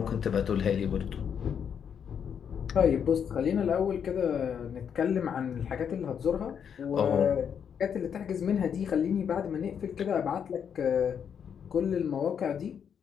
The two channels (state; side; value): quieter; right; 7.7 dB